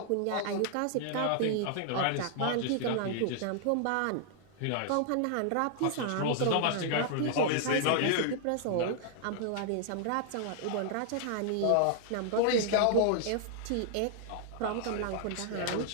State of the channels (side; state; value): both; different; correlation 0.00